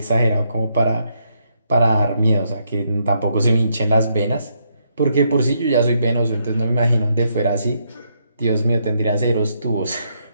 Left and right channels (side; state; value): both; inverted; correlation -0.77